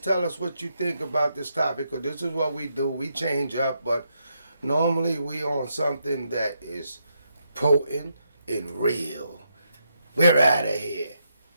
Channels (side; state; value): both; inverted; correlation -0.80